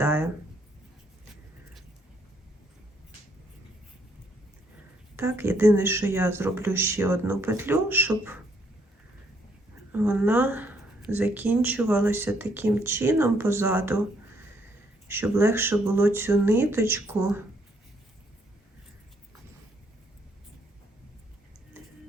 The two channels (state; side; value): normal; both; correlation 0.70